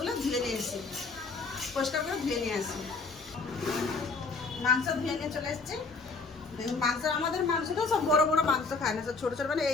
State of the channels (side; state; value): right; quieter; 4.1 dB